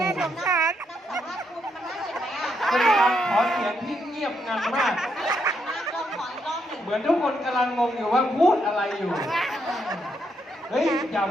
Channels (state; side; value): normal; both; correlation 0.77